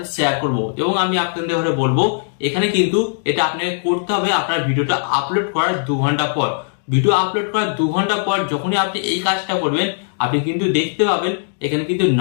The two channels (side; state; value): right; silent; digital silence